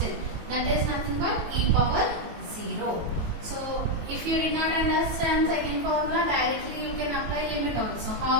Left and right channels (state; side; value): late; left; 18 ms